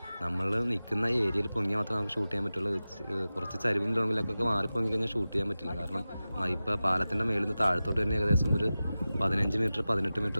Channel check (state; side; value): inverted; both; correlation -0.95